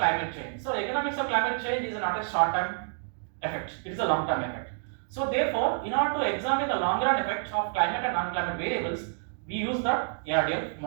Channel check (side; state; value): left; silent; digital silence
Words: change. So economics of climate change is not a short-term effect; it is a long-term effect. So therefore, in order to examine the long-run effect of climate and non-climate variables, we use the ARDL